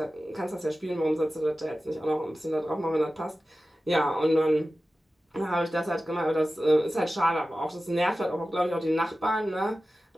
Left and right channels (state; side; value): normal; both; correlation 0.95